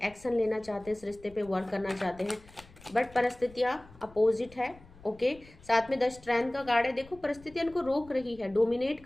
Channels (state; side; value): noise; left; rumble, 23 dB below the sound